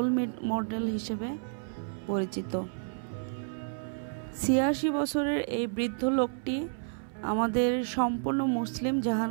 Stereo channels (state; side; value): silent; left; 57 dB below the other